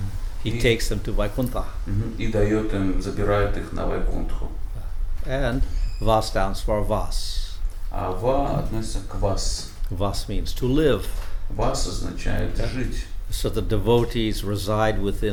He takes them to Vaikuntha. И дает им, забирает их на Вайкунтху. And Va stands for Vas. А Ва относится к Вас. Vas means to live. Вас означает жить. So the devotees reside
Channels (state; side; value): identical; both; correlation 1.00